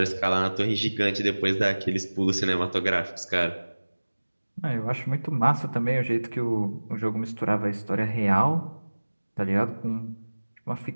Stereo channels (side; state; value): both; inverted; correlation -1.00